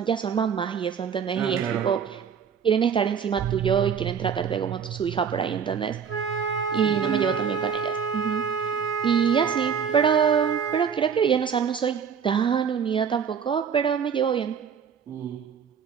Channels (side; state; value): left; quieter; 7.1 dB